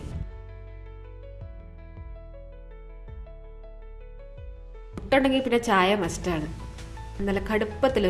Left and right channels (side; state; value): both; identical; correlation 1.00